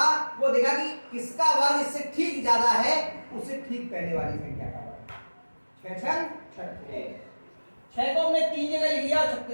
वो देखा कि किसका वर्ग इससे ठीक ज्यादा है, उससे ठीक पहले वाली संख्या का वर्ग। 6 6 को हमने 3 जगह लिख दिया और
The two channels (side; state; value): both; inverted; correlation -1.00